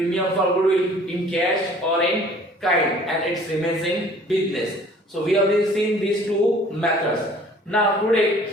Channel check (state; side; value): normal; both; correlation 0.52